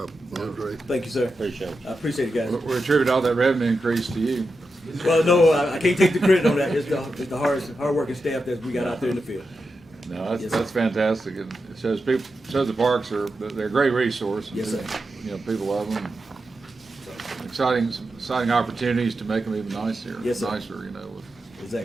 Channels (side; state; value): both; normal; correlation 0.89